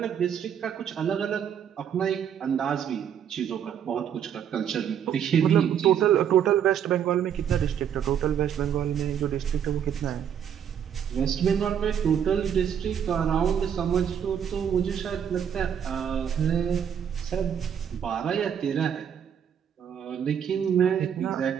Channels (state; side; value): quieter; left; 8.6 dB